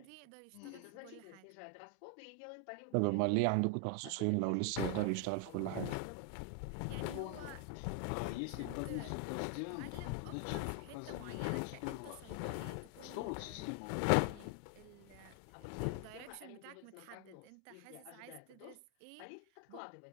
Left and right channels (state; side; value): different; both; correlation 0.00